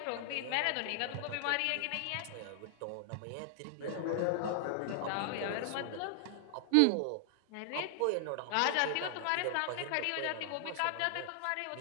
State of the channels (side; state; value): both; different; correlation 0.00